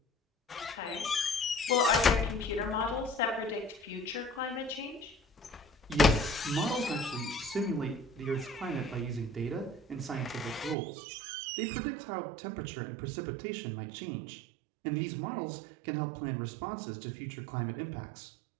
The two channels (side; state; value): left; drops out; at 10.8 s